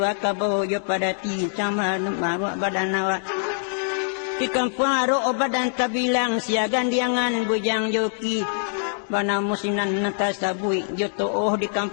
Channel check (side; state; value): right; silent; digital silence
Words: kabo jo pada ti sama maru badan awak. Di kampung aro badan tabilang siagan diangan bujang joki bana musinan natasabui joto di